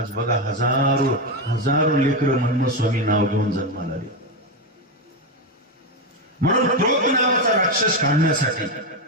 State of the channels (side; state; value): both; normal; correlation 0.10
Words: बघा, हजारो लेकरं मनमथ स्वामी नाव घेऊन जन्माला आले. म्हणून क्रोध नावाचा राक्षस काढण्यासाठी